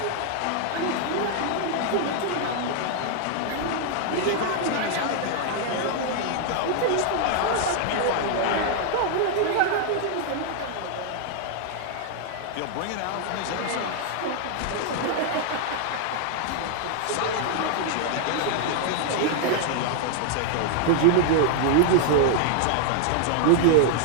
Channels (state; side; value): different; both; correlation 0.00